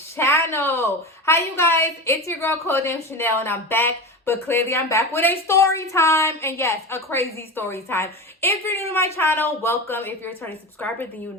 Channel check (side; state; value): both; normal; correlation 0.26